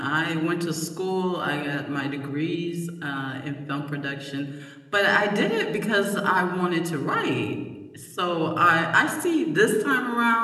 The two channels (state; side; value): identical; both; correlation 1.00